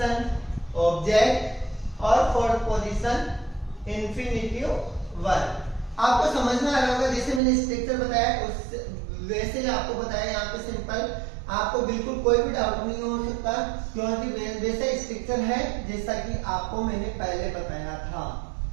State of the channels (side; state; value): left; drops out; at 7.4 s